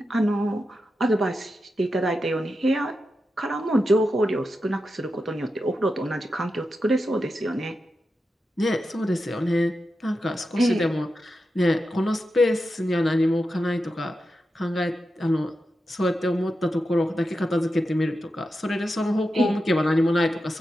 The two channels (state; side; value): normal; both; correlation 0.89